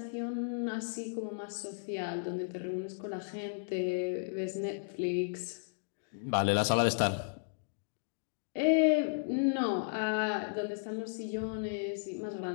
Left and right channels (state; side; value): silent; right; digital silence